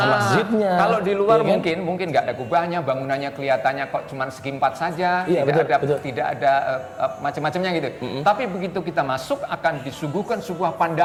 masjidnya. Kalau di luar mungkin nggak ada kubahnya, bangunannya kelihatannya kok cuma segi 4 saja, tidak ada macam-macamnya gitu. Tapi begitu kita masuk akan disuguhkan sebuah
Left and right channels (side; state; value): both; identical; correlation 1.00